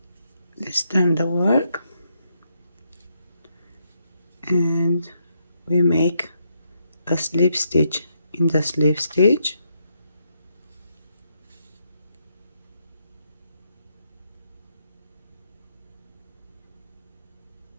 Let's turn the work and we make a slip stitch in the slip stitch,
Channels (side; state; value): both; inverted; correlation -0.78